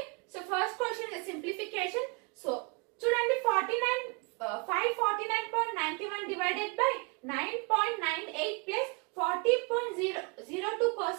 So first question simplification. So చూడండి, 549.91 divided by 9.98 plus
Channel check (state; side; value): quieter; left; 32.2 dB